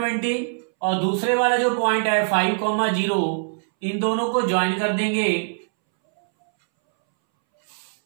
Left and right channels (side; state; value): left; silent; 63 dB below the other